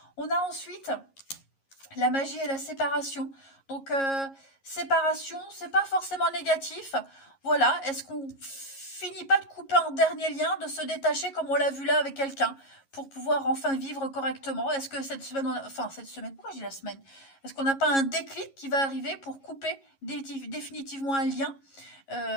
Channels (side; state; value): right; late; 11 ms